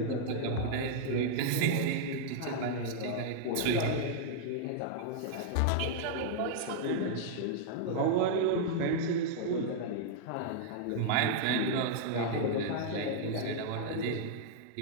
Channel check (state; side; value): different; both; correlation -0.01